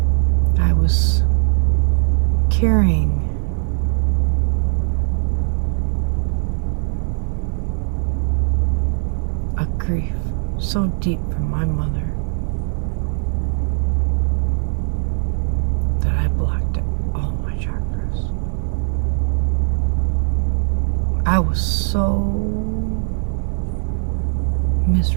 got. I was carrying a grief so deep from my mother that I blocked it, all my chakras. I was so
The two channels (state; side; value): silent; left; 66 dB below the other